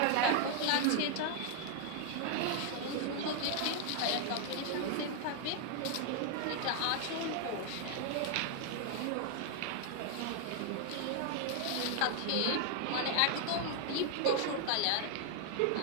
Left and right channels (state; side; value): different; both; correlation 0.00